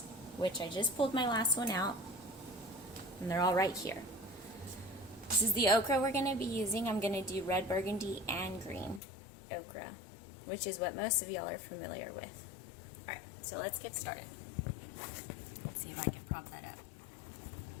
which I just pulled my last one out, and they're all right here. This is the okra we're going to be using. I'm going to do red, burgundy, and green okra, which is what most of y'all are familiar with. Alright, so let's get started. Let's see if I can pop that up.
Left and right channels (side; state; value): right; drops out; at 9.0 s